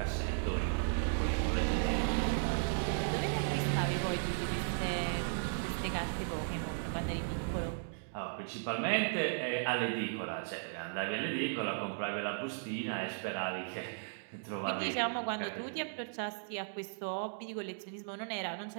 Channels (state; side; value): silent; left; digital silence